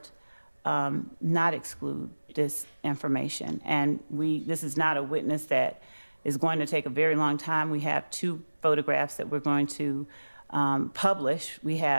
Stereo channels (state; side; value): inverted; both; correlation -1.00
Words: not exclude this information. And this is not a witness that is going to take a very long time. We have 2 photographs that we're going to publish. We